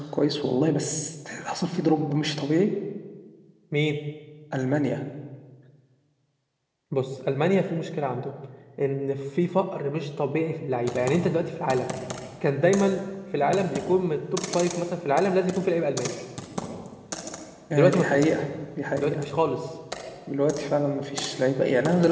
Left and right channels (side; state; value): both; identical; correlation 1.00